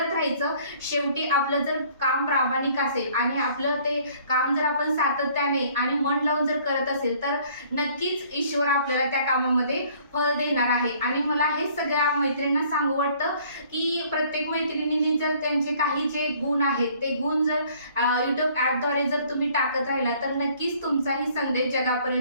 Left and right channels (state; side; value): inverted; both; correlation -0.57